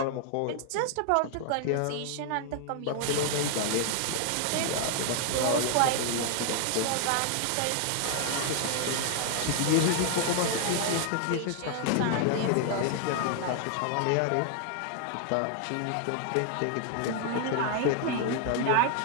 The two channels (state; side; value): different; both; correlation 0.00